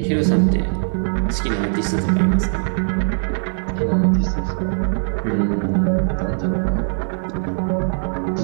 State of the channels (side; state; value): left; silent; 65 dB below the other